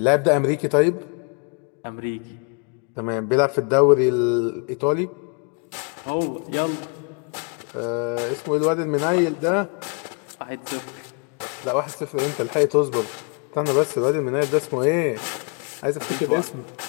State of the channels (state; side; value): quieter; right; 37.6 dB